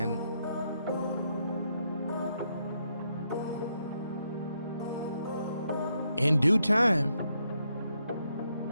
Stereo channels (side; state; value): both; inverted; correlation -0.78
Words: in due time,